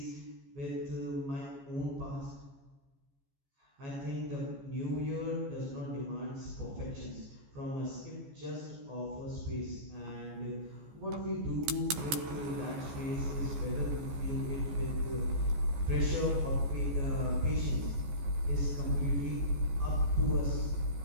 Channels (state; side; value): late; left; 14 ms